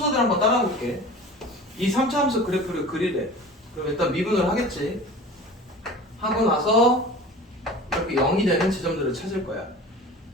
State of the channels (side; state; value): both; normal; correlation 0.39